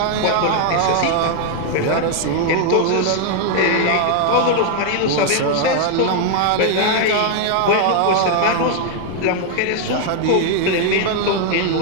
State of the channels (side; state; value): both; different; correlation 0.00